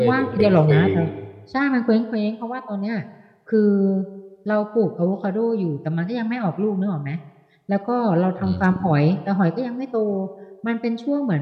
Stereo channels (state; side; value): identical; both; correlation 1.00